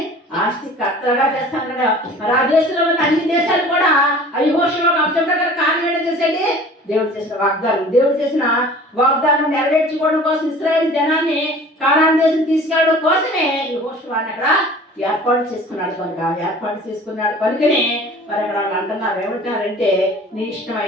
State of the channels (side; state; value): both; normal; correlation 0.45